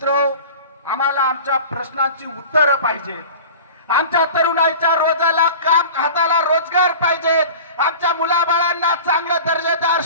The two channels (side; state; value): both; inverted; correlation -0.38